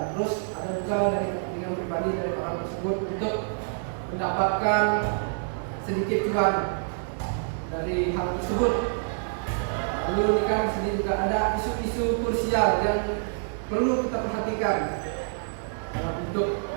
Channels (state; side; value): silent; left; digital silence